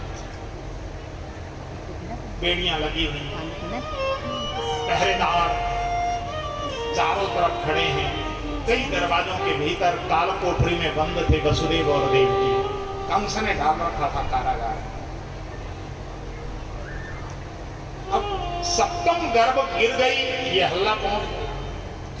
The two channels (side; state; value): both; identical; correlation 1.00